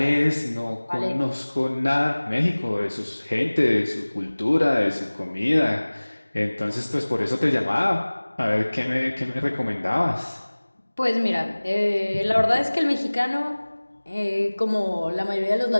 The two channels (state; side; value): inverted; both; correlation -1.00